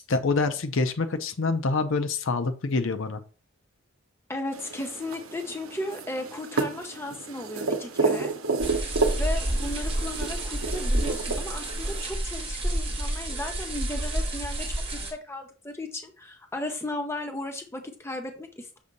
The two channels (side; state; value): both; normal; correlation 0.43